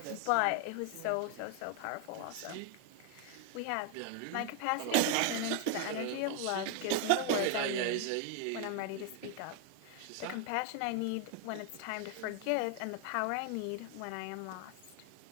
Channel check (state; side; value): different; both; correlation 0.00